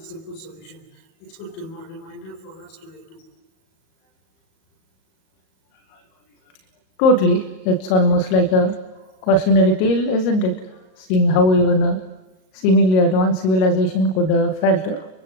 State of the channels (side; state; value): right; late; 38 ms